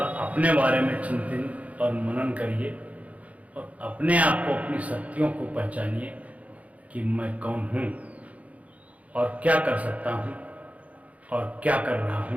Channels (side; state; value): left; late; 0.067 ms